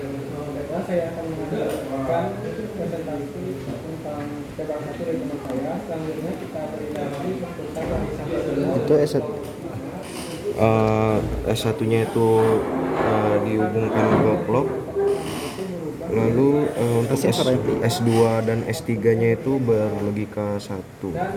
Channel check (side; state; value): both; identical; correlation 1.00